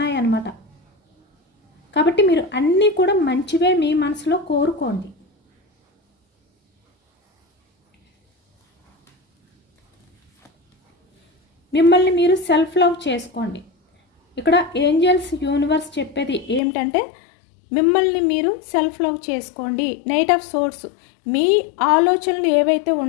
కాబట్టి మీరు అన్నీ కూడా మంచివే మీ మనసులో కోరుకోండి. మిమ్మల్ని మీరు సెల్ఫ్ లవ్ చేసుకోండి. ఇక్కడ ఏంజల్స్ యూనివర్స్ చెప్పేది ఏమిటంటే, మిమ్మల్ని మీరు సెల్ఫ్ లవ్ చేసుకోండి. నైట్ ఆఫ్ సోర్స్ మీ ఆలోచనలు ఏవైతే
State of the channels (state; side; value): drops out; right; at 16.6 s